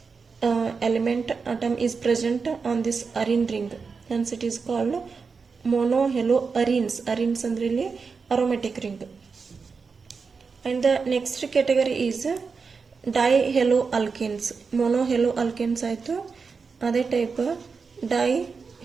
element atom is present on this arene ring, hence it is called mono haloarenes. arenes ಅಂದ್ರೆ ಇಲ್ಲಿ aromatic ring. And the next category is dihaloalkanes. mono haloalkanes ಆಯ್ತು, ಅದೇ ಟೈಪ್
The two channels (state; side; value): quieter; left; 5.1 dB